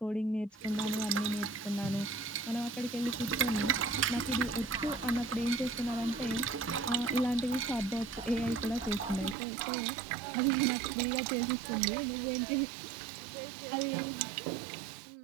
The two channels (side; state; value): left; drops out; at 9.3 s